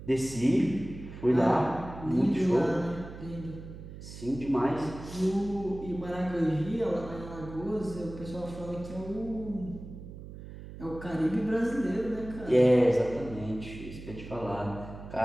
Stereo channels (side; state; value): right; noise; hum, 13 dB below the sound